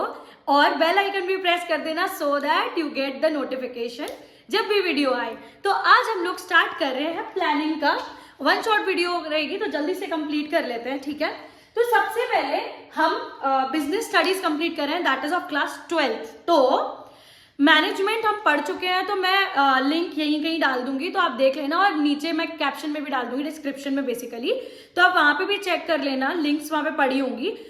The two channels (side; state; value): both; identical; correlation 1.00